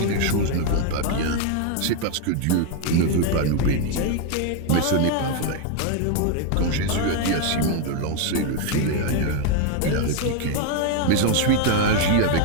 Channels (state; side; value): different; both; correlation 0.01